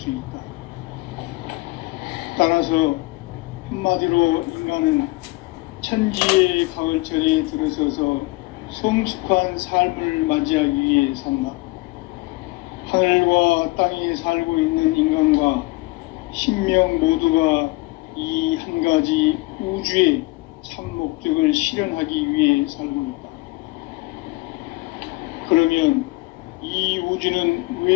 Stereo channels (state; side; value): quieter; right; 23.4 dB